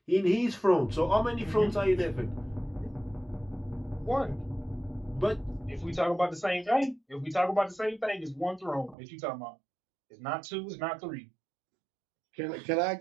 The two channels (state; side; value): drops out; left; at 9.0 s